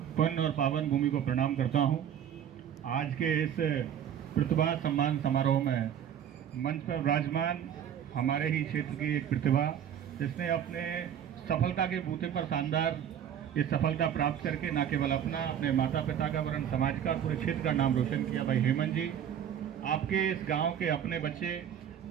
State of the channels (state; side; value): quieter; left; 9.3 dB